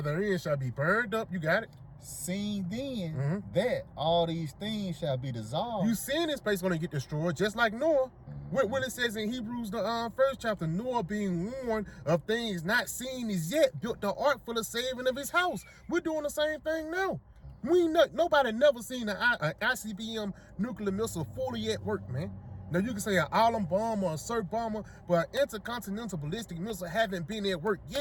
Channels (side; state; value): both; identical; correlation 1.00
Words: therein shall be burned up. You got it? Seeing then that all these things shall be dissolved. You seeing this place gonna get destroyed, just like Noah. What it says in Hebrews, the 1st chapter, Noah being warned of things not seen as yet, built the ark for the saving of his house. We're doing the same thing now. Nobody never seen an ICBM nuclear missile fully at work, man. Now you can say an Atom bomb or a SIRT bomber, but an intercontinental ballistic missile haven't been at work